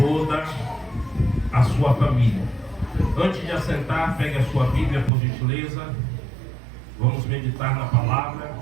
a sua família. Antes de assentar, pegue a sua Bíblia, por gentileza. Vamos meditar na palavra.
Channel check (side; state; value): left; drops out; at 5.1 s